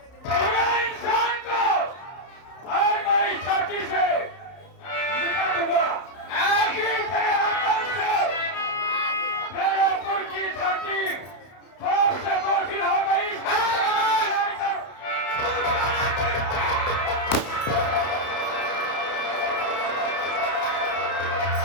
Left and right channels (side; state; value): right; late; 31 ms